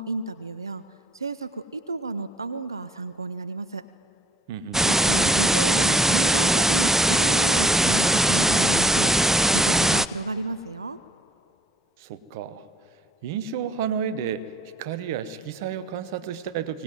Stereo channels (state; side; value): normal; both; correlation 0.59